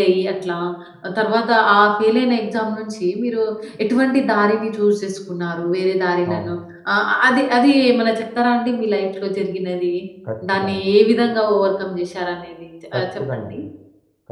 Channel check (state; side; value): identical; both; correlation 1.00